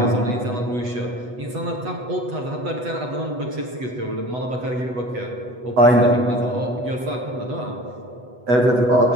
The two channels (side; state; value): left; late; 8.1 ms